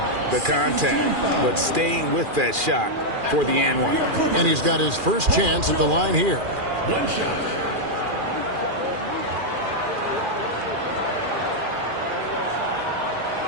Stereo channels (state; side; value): late; left; 2.4 ms